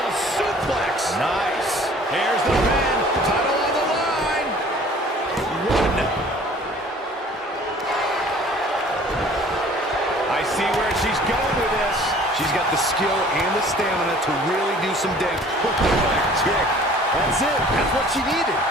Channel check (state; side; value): normal; both; correlation 0.51